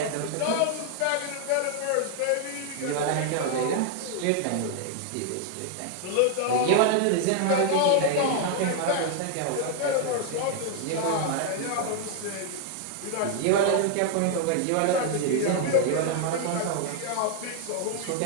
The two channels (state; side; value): different; both; correlation 0.00